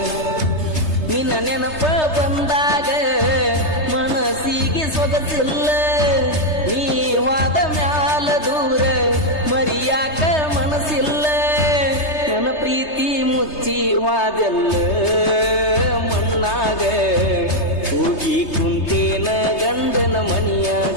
ನಿನ್ನ ನೆನಪ ಬಂದಾಗ ಮನಸ್ಸಿಗೆ ಸೊಗಸಿಲ್ಲ ನೀವಾದ ಮ್ಯಾಲ ದೂರ ಮರಿಯಾಕ ಮನಸ್ಸಿಲ್ಲ ನನ್ನ ಪ್ರೀತಿ ಮುಚ್ಚಿ ವಾದೆಲ್ಲ ಮಣ್ಣಾಗ ಹೋಗಿ ಕುಂತೇನ ಗಂಡನ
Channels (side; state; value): right; late; 3.3 ms